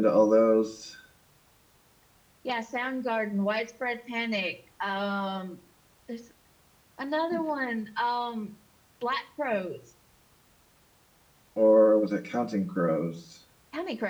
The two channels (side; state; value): both; identical; correlation 1.00